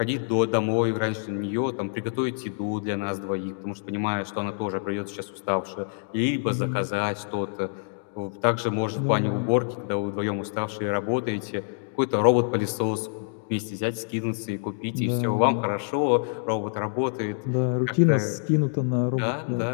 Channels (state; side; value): silent; right; digital silence